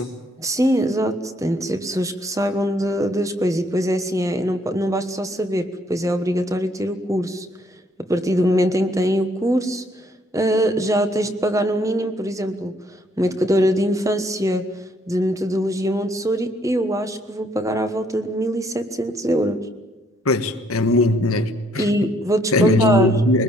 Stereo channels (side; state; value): both; normal; correlation 0.68